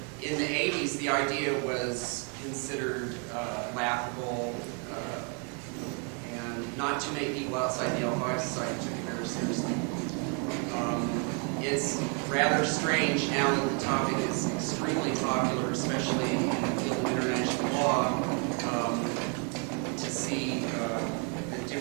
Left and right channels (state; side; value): quieter; left; 38.1 dB